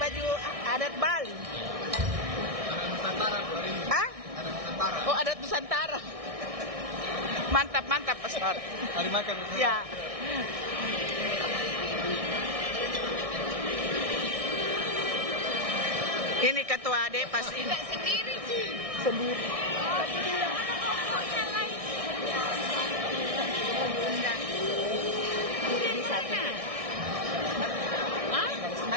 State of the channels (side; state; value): left; late; 1.6 ms